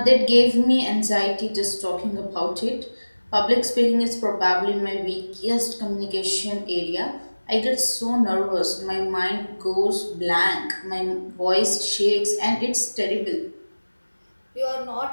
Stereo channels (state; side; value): inverted; both; correlation -1.00